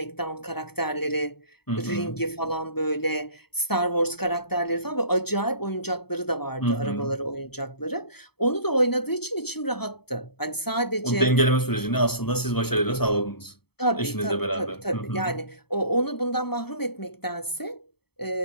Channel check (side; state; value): right; late; 0.97 ms